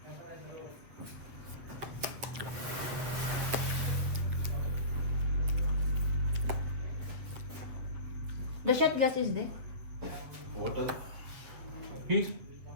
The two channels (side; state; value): left; late; 7.7 ms